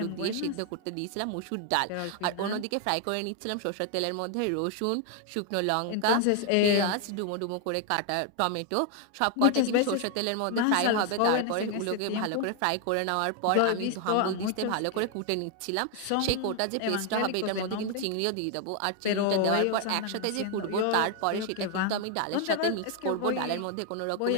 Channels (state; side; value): different; both; correlation 0.01